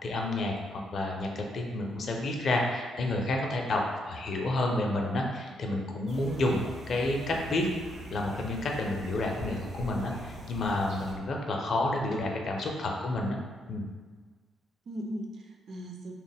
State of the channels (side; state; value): both; normal; correlation 0.76